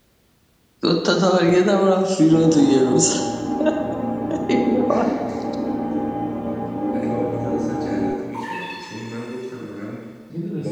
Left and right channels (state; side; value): identical; both; correlation 1.00